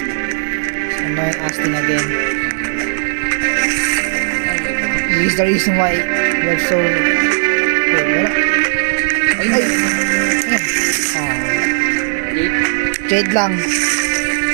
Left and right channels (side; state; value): left; silent; digital silence